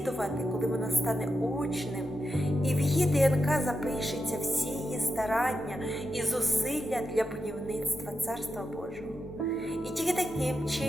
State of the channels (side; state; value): both; normal; correlation 0.88